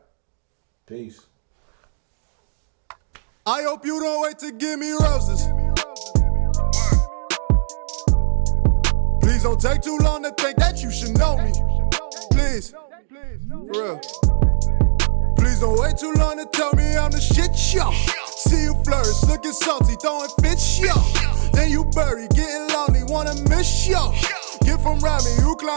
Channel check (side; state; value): left; silent; digital silence